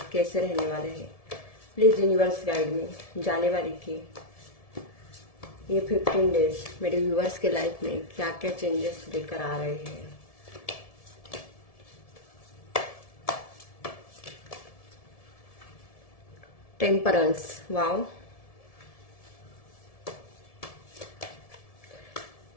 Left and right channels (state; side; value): late; right; 1.7 ms